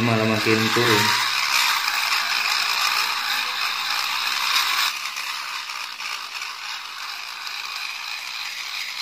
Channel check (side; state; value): both; identical; correlation 1.00